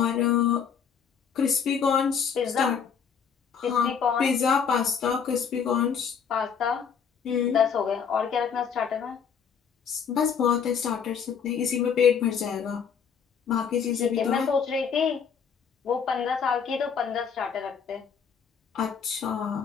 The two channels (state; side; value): quieter; right; 6.9 dB